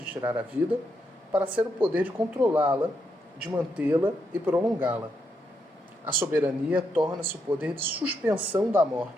tirar a vida para ser o poder de controlá-la, de mantê-la e prolongá-la. A soberania torna-se o poder de suspensão da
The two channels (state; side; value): normal; both; correlation 0.80